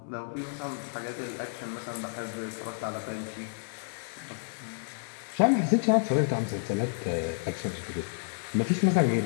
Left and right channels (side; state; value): right; silent; 58 dB below the other